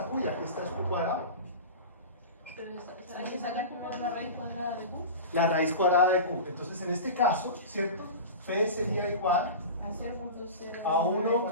Q y aquí está Q cuadrado. Hay que sacar la raíz cuadrada de Q La raíz cuadrada de Q. Entonces, en este caso, ¿cierto? P sería igual a 0,0 a 1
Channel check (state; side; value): inverted; both; correlation -0.30